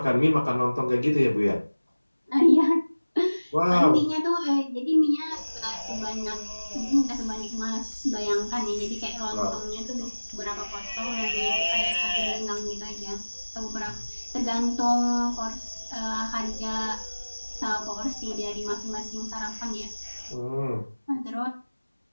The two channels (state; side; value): inverted; both; correlation -1.00